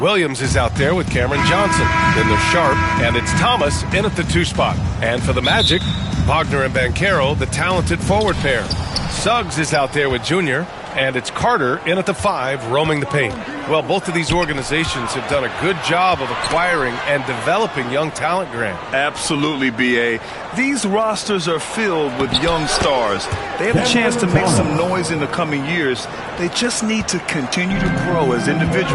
Williams is out there with Cameron Johnson. Then there's Sharp, and it's Thomas in at the 2 spot. And for the Magic, Wagner and Banchero, the talented forward pair. Suggs is out there with Junior, and it's Carter in at the 5, roaming the paint. Well, both of these organizations have done a good job of acquiring and developing young talent, Grant. Absolutely, B.A. These rosters are filled with young stars. They have a chance to make some noise in the coming years. They just need to continue to grow as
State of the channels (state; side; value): identical; both; correlation 1.00